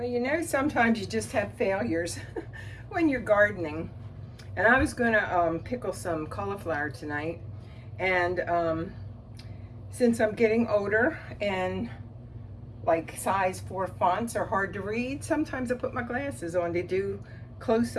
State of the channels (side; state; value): both; identical; correlation 1.00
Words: you know, sometimes you just have failures when you're gardening. And I was going to pickle some cauliflower tonight, and since I'm getting older and like size 4 fonts are hard to read, sometimes I put my glasses on to do